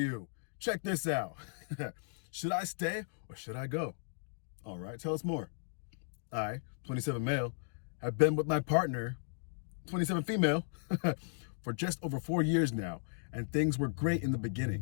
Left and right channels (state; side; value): silent; right; digital silence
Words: Check this out. Should I stay or should I go? All right, tell us more. I, 27 male, have been with my partner, 27 female, for just over 4 years now, and things were great in the